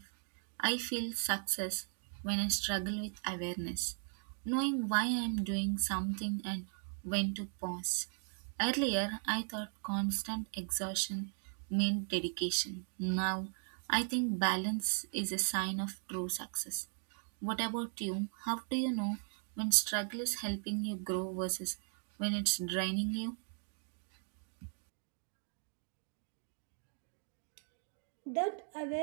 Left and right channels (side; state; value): left; silent; 53 dB below the other